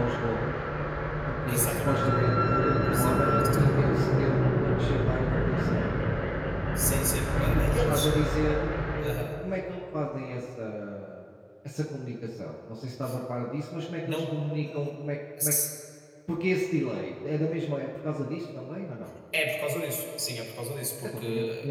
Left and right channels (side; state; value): both; identical; correlation 1.00